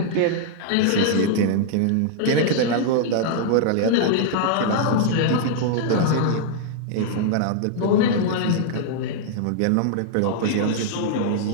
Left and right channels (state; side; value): different; both; correlation -0.01